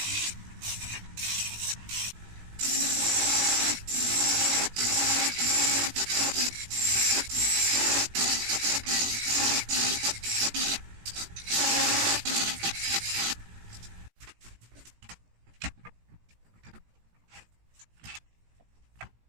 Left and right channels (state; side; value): late; left; 17 ms